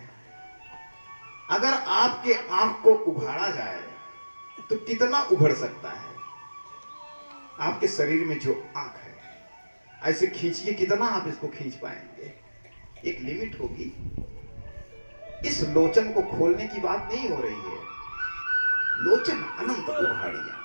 अगर आपके आंख को उघाड़ा जाए तो कितना उभर सकता है? आपके शरीर में जो आंख है, ऐसे खींचिए, कितना आप इसको खींच पाएंगे? एक लिमिट होगी। इस लोचन को खोलने की बात नहीं हो रही है। लोचन अनंत उघाड़िया,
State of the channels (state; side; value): inverted; both; correlation -1.00